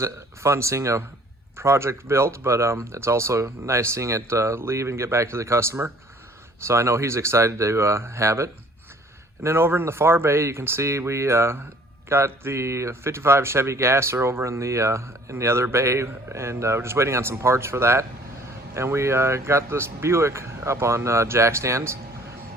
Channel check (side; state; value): both; normal; correlation 0.55